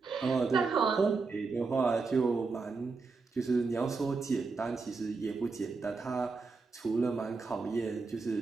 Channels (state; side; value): quieter; left; 4.3 dB